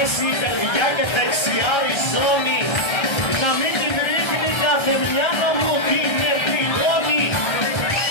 η καρδιά και δεξιά η ζώνη. Να μην την ρίχνει κάθε μυαλό μου την επιγόνη.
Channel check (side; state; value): right; late; 1.3 ms